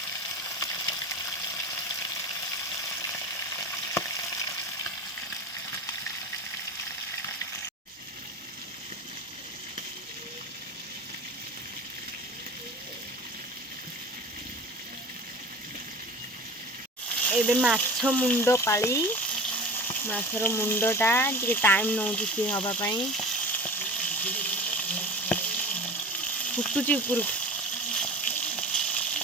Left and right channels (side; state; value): both; normal; correlation 0.35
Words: एबे माछ मुंड पाली माछर मुंडटा टिके टाइम नौची सी हवा पाई फुटुची ऊपर